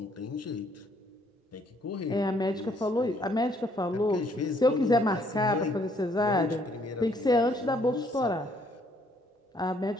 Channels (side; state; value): both; normal; correlation 0.66